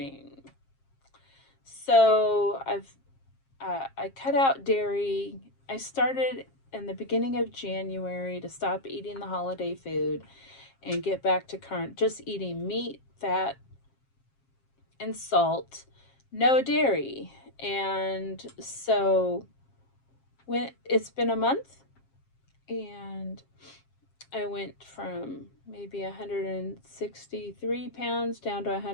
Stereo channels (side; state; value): right; late; 7.5 ms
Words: So I cut out dairy. I started in the beginning of January to stop eating the holiday food and get back to just eating meat, fat, and salt, no dairy. And so when it's been a month, and I went from maybe 163 pounds down to